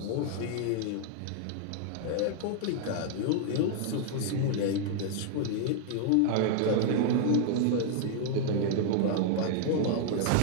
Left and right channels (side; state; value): both; different; correlation 0.00